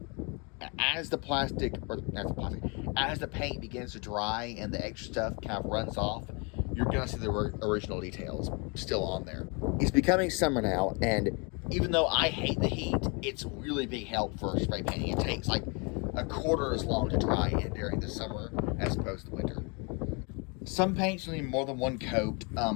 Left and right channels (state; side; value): quieter; right; 32.5 dB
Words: as the plastic, or not the plastic, as the paint begins to dry and the extra stuff kind of runs off, you're going to see the original details still on there. It's becoming summer now, and even though I hate the heat, it's really big help for spray painting. It takes like a quarter as long to dry in during the summer as opposed to winter. Some paints need more than one coat. A